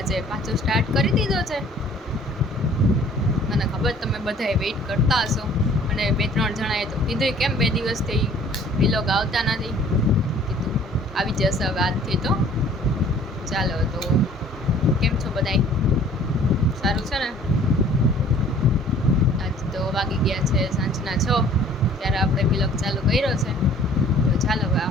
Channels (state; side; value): normal; both; correlation 0.53